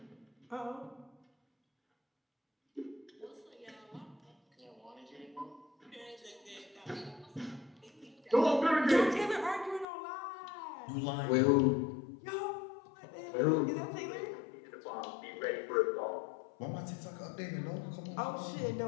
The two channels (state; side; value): drops out; right; at 9.9 s